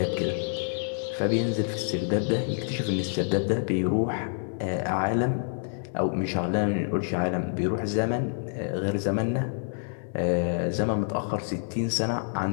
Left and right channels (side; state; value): right; silent; digital silence